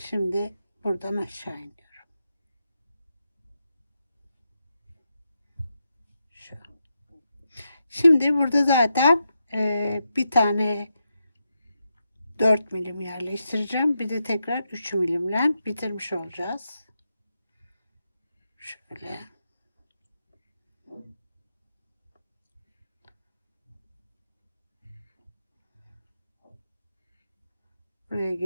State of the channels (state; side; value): inverted; both; correlation -0.85